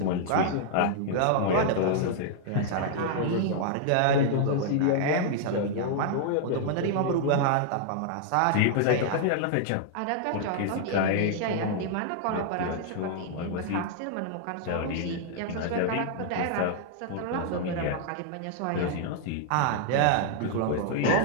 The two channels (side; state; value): both; different; correlation -0.01